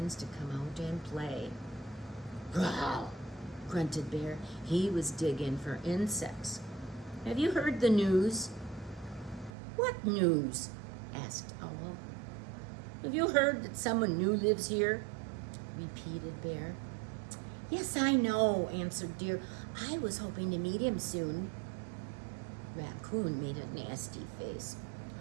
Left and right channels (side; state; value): left; drops out; at 9.5 s